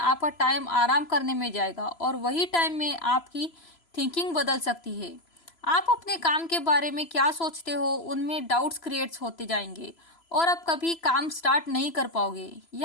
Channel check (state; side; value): late; right; 3.0 ms